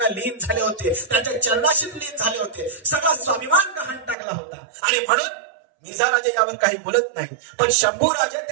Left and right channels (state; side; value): drops out; left; at 4.2 s